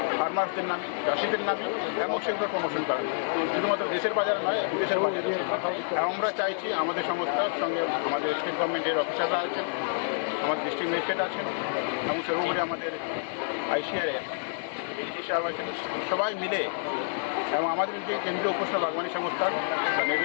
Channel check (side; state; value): right; silent; digital silence